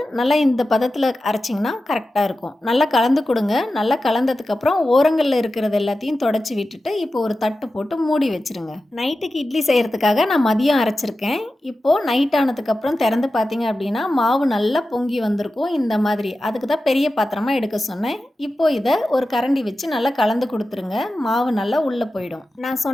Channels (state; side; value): normal; both; correlation 0.93